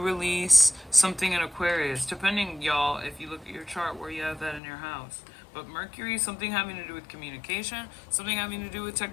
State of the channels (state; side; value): drops out; right; at 4.6 s